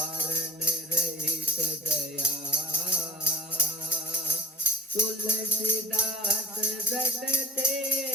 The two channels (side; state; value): both; normal; correlation 0.46